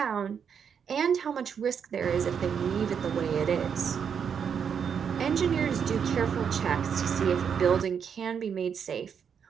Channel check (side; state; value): left; quieter; 7.3 dB